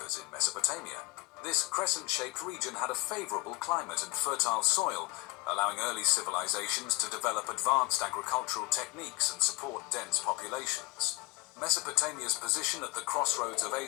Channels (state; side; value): quieter; right; 24.2 dB